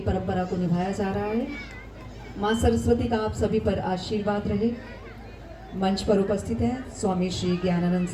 परंपरा को निभाया जा रहा है। मां सरस्वती का आप सभी पर आशीर्वाद रहे। मंच पर उपस्थित हैं स्वामी श्री ज्ञानानंद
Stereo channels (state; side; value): identical; both; correlation 1.00